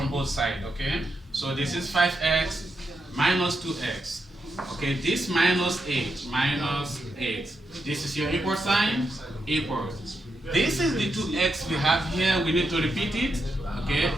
both sides, okay? So this is 5x minus 2x. Okay, this minus 8, minus 8. This is your equal sign, equals. This is the 2x we have here, we need to repeat it, okay?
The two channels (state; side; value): normal; both; correlation 0.84